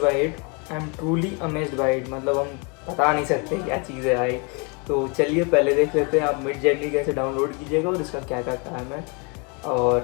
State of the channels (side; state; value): right; quieter; 33.0 dB